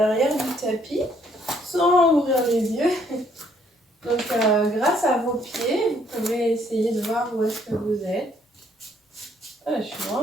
du tapis sans ouvrir les yeux. Donc grâce à vos pieds, vous pouvez essayer de voir où est-ce que vous êtes. Ah, je suis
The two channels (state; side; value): normal; both; correlation 0.66